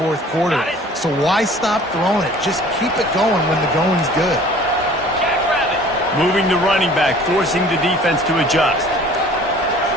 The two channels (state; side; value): normal; both; correlation 0.49